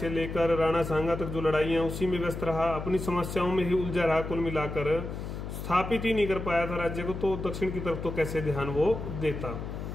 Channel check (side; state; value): left; noise; hum, 7 dB below the sound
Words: लेकर राणा सांगा तक जो लड़ाइयाँ, उसी में व्यस्त रहा, अपनी समस्याओं में ही उलझा रहा। कुल मिलाकर स्थापित ही नहीं कर पाया था राज्य को, तो दक्षिण की तरफ तो कैसे ध्यान वो देता।